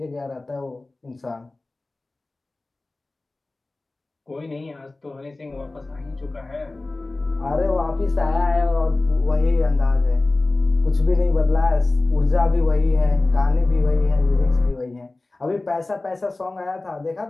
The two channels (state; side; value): quieter; right; 3.1 dB